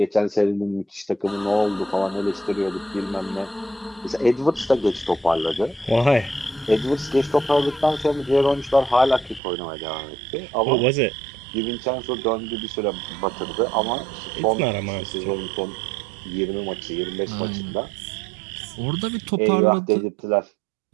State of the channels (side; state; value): left; drops out; at 9.4 s